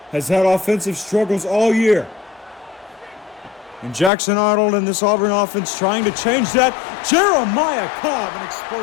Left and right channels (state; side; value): drops out; right; at 4.1 s